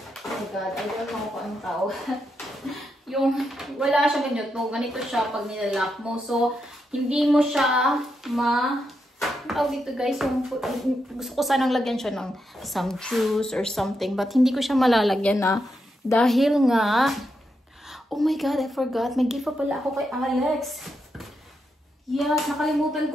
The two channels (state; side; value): normal; both; correlation 0.84